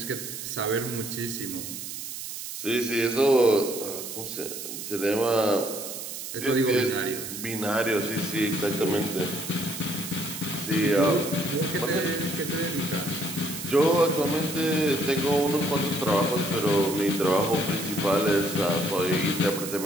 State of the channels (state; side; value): noise; right; hiss, 8 dB below the sound